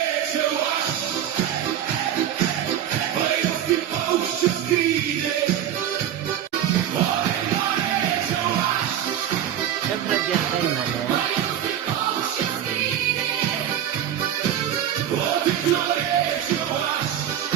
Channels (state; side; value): quieter; left; 10.5 dB